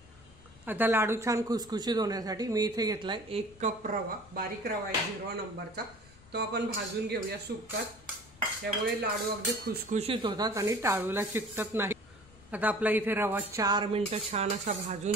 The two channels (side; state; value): left; noise; rumble, 24 dB below the sound